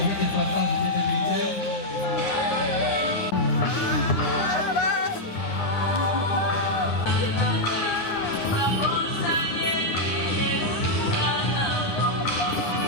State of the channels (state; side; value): late; right; 9.6 ms